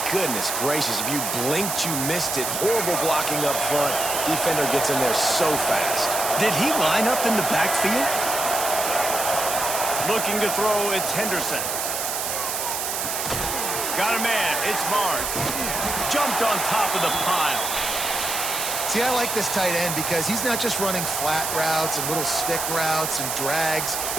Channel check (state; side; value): noise; right; hiss, 2 dB below the sound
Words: Goodness gracious, if you blinked, you missed it. Horrible blocking up front. Defender gets in there so fast. Did he line up in the backfield? Looking to throw, it's Henderson. Got a man, it's Barnes. Jumped on top of the pile. See, I like this tight end because he's not just running flat routes and little stick routes and drags.